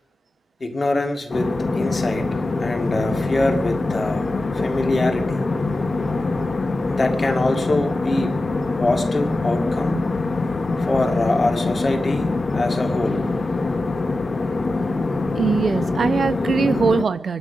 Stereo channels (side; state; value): both; normal; correlation 0.92